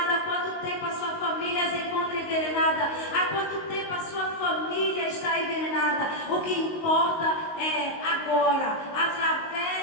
há quanto tempo a sua família se encontra envenenada, há quanto tempo a sua família está envenenada. O que importa é agora,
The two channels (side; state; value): right; late; 19 ms